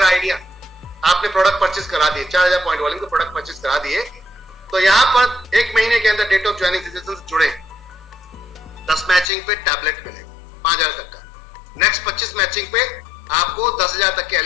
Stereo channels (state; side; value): drops out; right; at 9.2 s